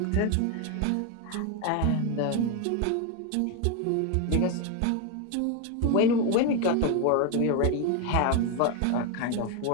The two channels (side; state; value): both; different; correlation 0.02